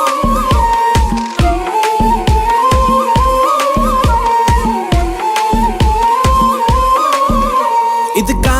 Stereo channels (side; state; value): both; identical; correlation 1.00